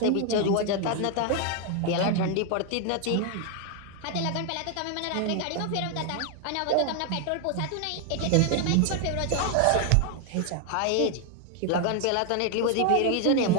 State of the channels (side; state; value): both; different; correlation 0.01